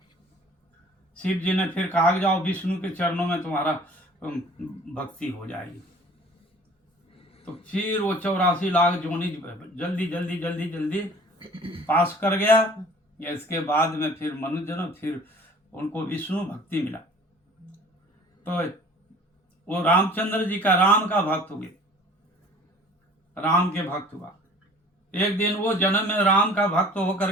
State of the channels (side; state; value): both; normal; correlation 0.49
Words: शिव जी ने फिर कहा जाओ विष्णु के चरणों में तुम्हारा भक्ति हो जाएगी। तो फिर वो 84 लाख जोनी जल्दी जल्दी जल्दी जल्दी पास कर गया। इसके बाद में फिर मनुष्य जन्म, फिर उनको विष्णु भक्ति मिला। तो वो रामचंद्र जी का राम का भक्त हुए, राम के भक्त हुआ। एक दिन वो जन्म में राम का भक्त होकर